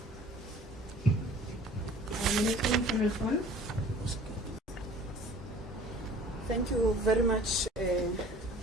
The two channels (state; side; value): normal; both; correlation 0.48